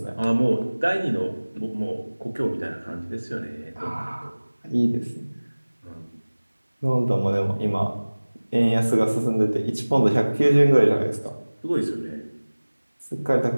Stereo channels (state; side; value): inverted; both; correlation -1.00